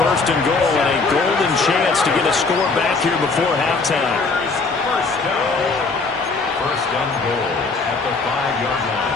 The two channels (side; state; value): right; quieter; 4.1 dB